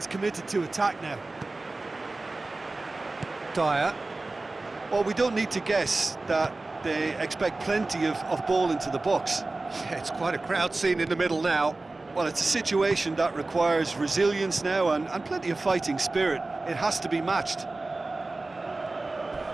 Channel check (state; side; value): quieter; left; 3.2 dB